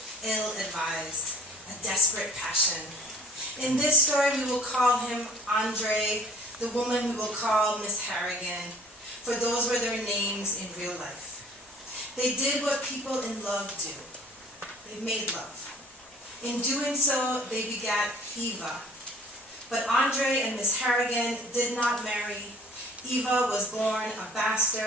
ill-advised, a desperate passion. In this story, we will call him Andre. The woman we will call Miss Harrigan, for those were their names in real life. They did what people in love do. They made love. In doing so, they begat Eva. But Andre and Miss Harrigan did not marry. Eva was born a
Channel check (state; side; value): normal; both; correlation 0.51